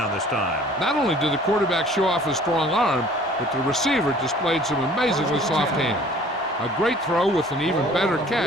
this time. Not only did the quarterback show off his strong arm, but the receiver displayed some amazingly soft hands. A great throw with an even better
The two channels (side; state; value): both; normal; correlation 0.52